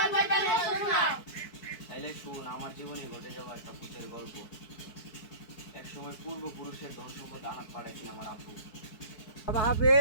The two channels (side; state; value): right; late; 4.6 ms